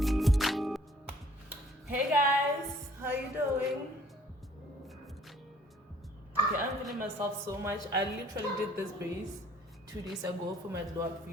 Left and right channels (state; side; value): normal; both; correlation 0.58